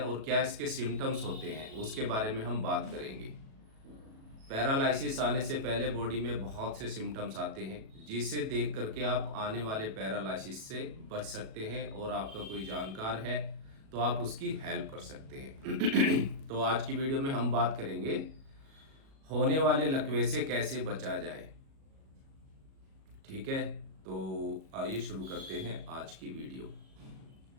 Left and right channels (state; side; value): late; left; 37 ms